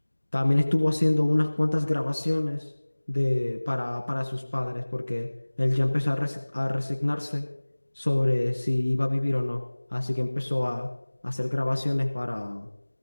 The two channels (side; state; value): both; inverted; correlation -1.00